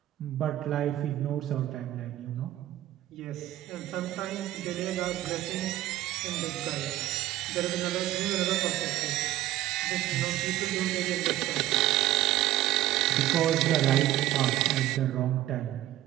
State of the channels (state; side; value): quieter; left; 14.6 dB